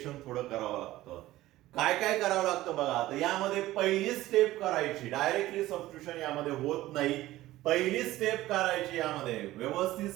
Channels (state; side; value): quieter; left; 16.2 dB